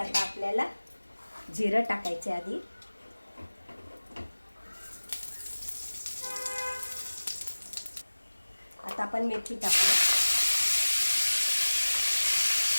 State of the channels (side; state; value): both; inverted; correlation -1.00